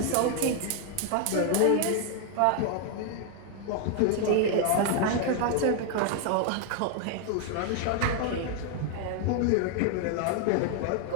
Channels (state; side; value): different; both; correlation 0.00